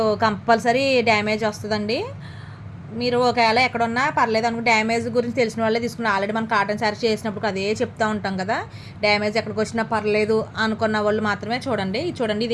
కంపల్సరీ డ్యామేజ్ వస్తుందండి. మీరు ఒకవేళ ఎక్కడున్నా పర్లేదు అనుకో, డ్యామేజ్ గురించి తెలిసిన వాళ్ళే తీసుకుని ఆల్రెడీ మనం కాటన్ శారీ చేసినప్పుడు అదే చెప్తూ ఉంటాం కదా. డ్యామేజ్ ఎక్కడికి వచ్చినా పర్లేదు అనుకున్న వాళ్ళు మాత్రమే చూడండి. ఇది చూడండి,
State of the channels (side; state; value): both; identical; correlation 1.00